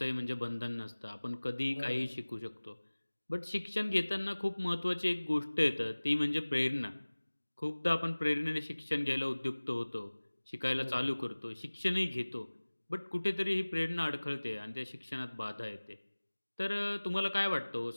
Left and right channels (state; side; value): inverted; both; correlation -1.00